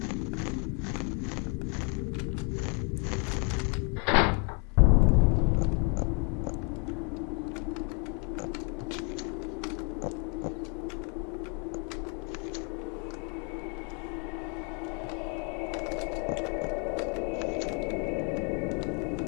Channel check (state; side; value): quieter; right; 36.0 dB